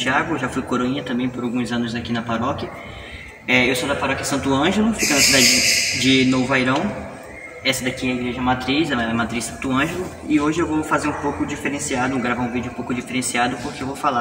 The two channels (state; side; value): identical; both; correlation 1.00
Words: já fui coroinha também por alguns anos aqui na paróquia. Eu sou da paróquia Santo Ângelo, fica na cidade de Novo Airão. Essa daqui é a igreja matriz, ela é a matriz Santo Ângelo. E hoje eu vou fazer um pouco diferenciado, gravar um vídeo um pouco diferenciado, porque eu